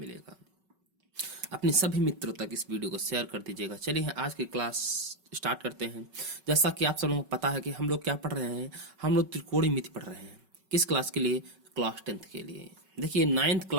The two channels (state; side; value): late; left; 5.3 ms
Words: अपने सभी मित्रों तक इस वीडियो को शेयर कर दीजिएगा। चलिए आज की क्लास स्टार्ट करते हैं। जैसा कि आप सब लोगों को पता है कि हम लोग क्या पढ़ रहे हैं, हम लोग त्रिकोणमिति पढ़ रहे हैं। किस क्लास के लिए? क्लास 10th के लिए। देखिए नाइन्थ